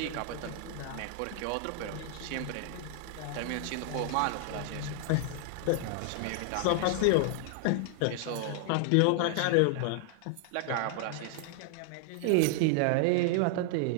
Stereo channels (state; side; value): different; both; correlation 0.00